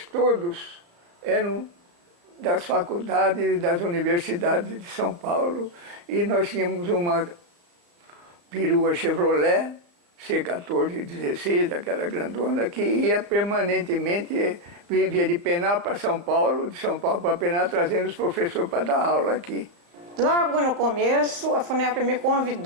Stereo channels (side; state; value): left; late; 35 ms